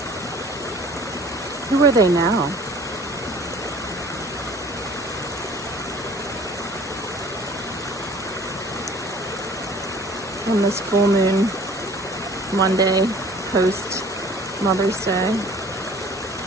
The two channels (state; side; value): normal; both; correlation 0.50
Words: Who are they now? On this full moon Monday post Mother's Day,